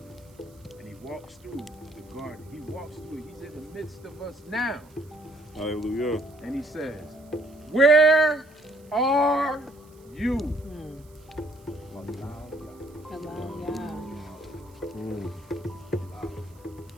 And he walks through the garden. He walks through it. He's in the midst of us now. Hallelujah. And he says, where are you? Allow Yah.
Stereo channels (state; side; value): noise; right; hiss, 29 dB below the sound